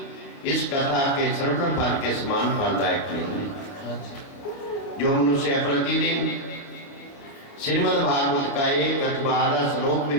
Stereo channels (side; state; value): right; late; 29 ms